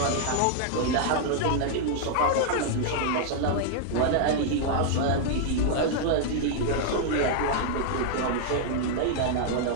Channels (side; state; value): both; different; correlation -0.01